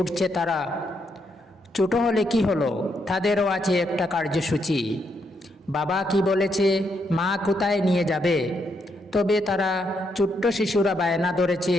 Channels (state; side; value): normal; both; correlation 0.78